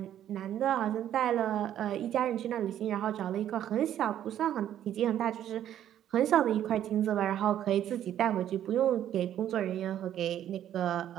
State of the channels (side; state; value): left; quieter; 11.0 dB